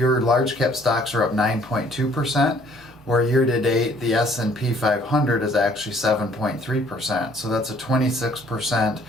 large cap stocks are up 9.2%, where year to date the S&P 500 is actually 7.3%. So that's a 26%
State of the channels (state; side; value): normal; both; correlation 0.60